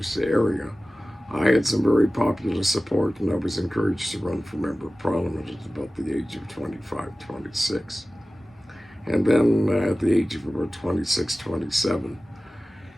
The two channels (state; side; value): normal; both; correlation 0.96